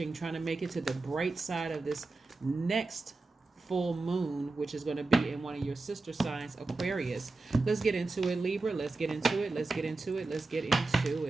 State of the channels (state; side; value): quieter; left; 3.5 dB